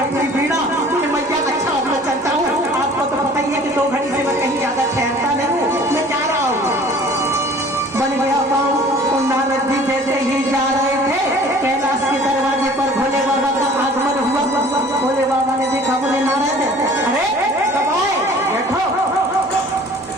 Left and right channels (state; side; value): normal; both; correlation 0.49